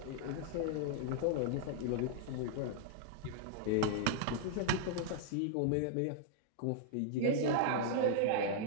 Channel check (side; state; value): both; different; correlation -0.01